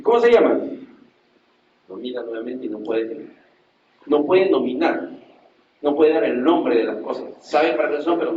cómo se llama? Nomina nuevamente y no puede nominar. No puede dar el nombre de las cosas. Sabe para qué son, pero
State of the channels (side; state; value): both; identical; correlation 1.00